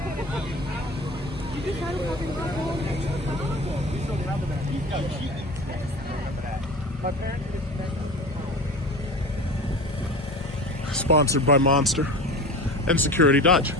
sponsored by Monster and Security Dodge.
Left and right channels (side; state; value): both; normal; correlation 0.34